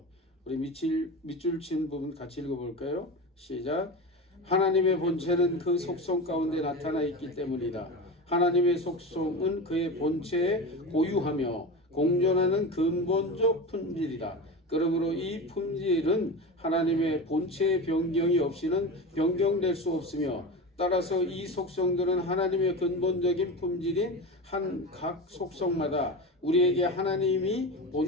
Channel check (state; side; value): normal; both; correlation 0.25